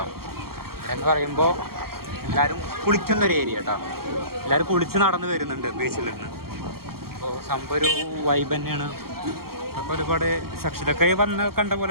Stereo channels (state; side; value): late; left; 0.94 ms